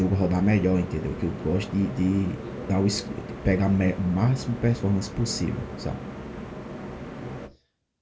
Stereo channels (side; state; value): both; identical; correlation 1.00